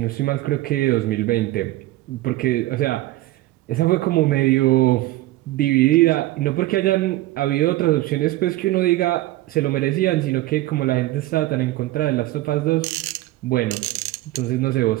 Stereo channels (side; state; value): left; quieter; 17.1 dB